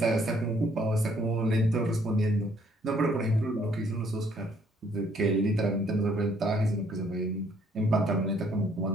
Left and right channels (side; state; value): both; normal; correlation 0.65